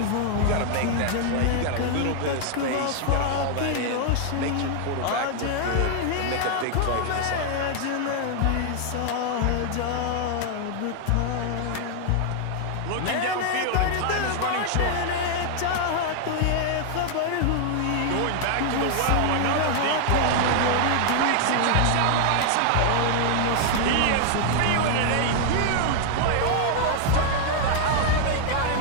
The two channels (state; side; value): different; both; correlation 0.00